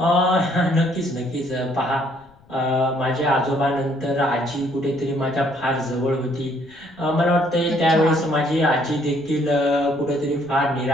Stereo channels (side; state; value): left; noise; rumble, 29 dB below the sound